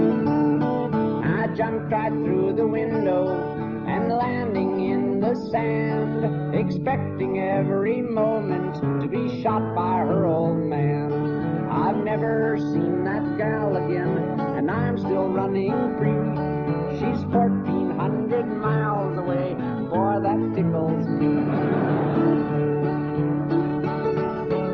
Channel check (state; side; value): identical; both; correlation 1.00